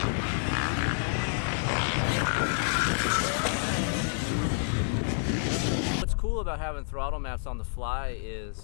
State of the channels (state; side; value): silent; right; 59 dB below the other